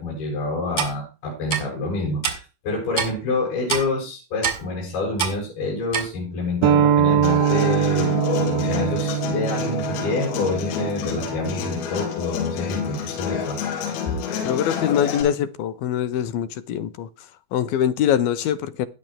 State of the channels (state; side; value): late; right; 12 ms